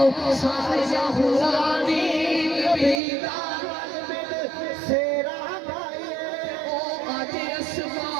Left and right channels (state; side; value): drops out; left; at 3.0 s